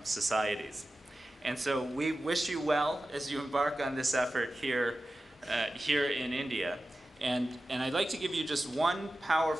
societies. And so we wish you well as you embark on this effort here in India. And I'd like to give you just one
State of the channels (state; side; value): normal; both; correlation 0.94